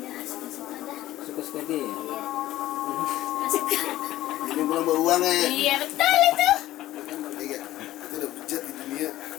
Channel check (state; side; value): quieter; right; 15.0 dB